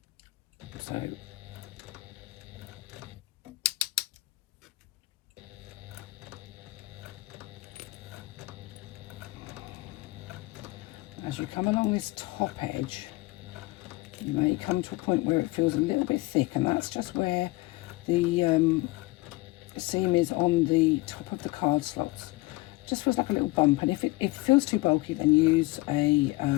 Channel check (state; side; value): quieter; right; 21.0 dB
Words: So as you come along this top edge, you may come to a point where it feels a little bit thick, and that's just where the seam is on the top of the card slots. Just feels like a little bump, and if it feels too bulky, then use a